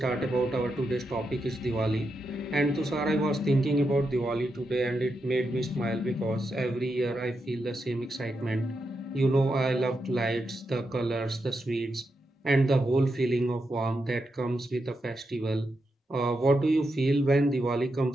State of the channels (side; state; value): both; normal; correlation 0.85